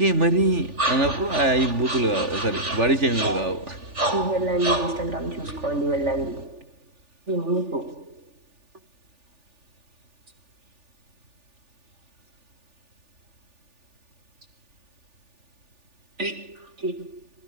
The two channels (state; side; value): late; left; 3.4 ms